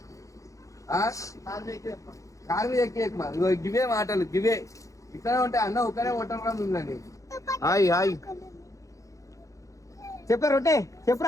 కారు మీద ఎక్కి ఎక్కుమా. ఇగో గివే మాటలు గివే. ఇక్కడ ఉంటే అన్న ఒకనే కొట్టరా ఉందండి. హాయ్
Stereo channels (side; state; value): right; late; 0.16 ms